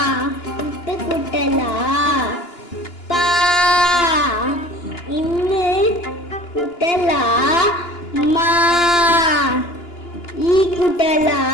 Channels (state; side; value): late; right; 2.9 ms